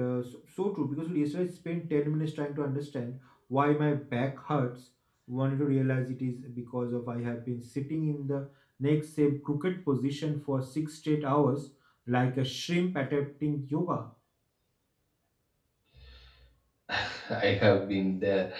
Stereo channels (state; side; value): identical; both; correlation 1.00